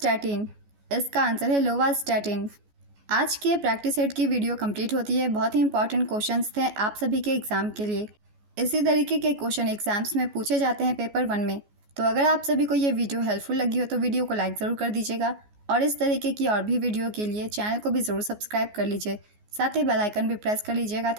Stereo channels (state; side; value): late; left; 14 ms